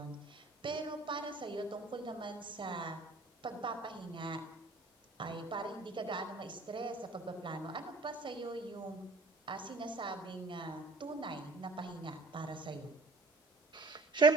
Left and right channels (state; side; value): quieter; left; 3.3 dB